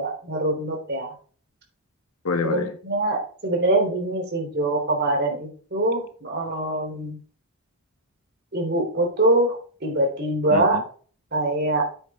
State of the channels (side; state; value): both; normal; correlation -0.18